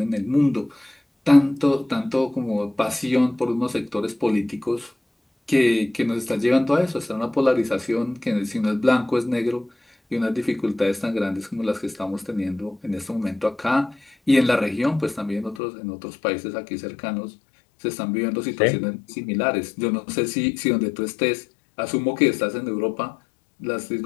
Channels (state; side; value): drops out; right; at 15.6 s